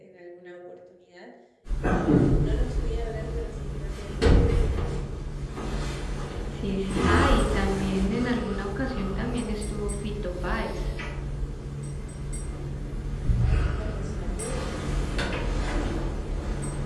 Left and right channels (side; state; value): both; identical; correlation 1.00